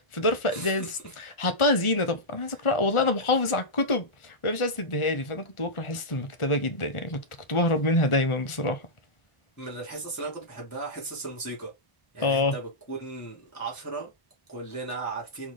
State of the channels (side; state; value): right; late; 1.4 ms